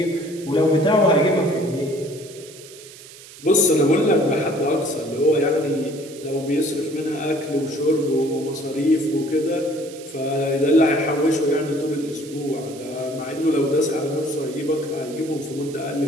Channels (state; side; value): noise; right; hiss, 18 dB below the sound